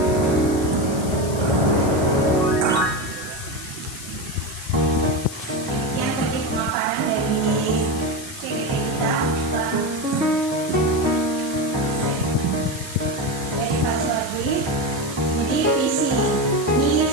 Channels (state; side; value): noise; left; hiss, 12 dB below the sound